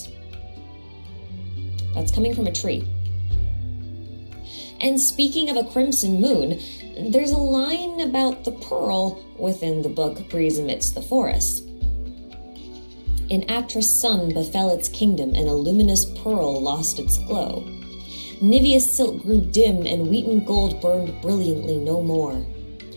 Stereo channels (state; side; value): inverted; both; correlation -1.00